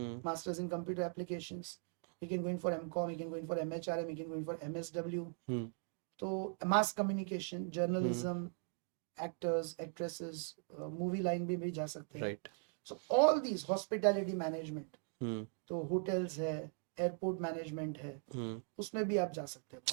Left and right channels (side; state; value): left; silent; 51 dB below the other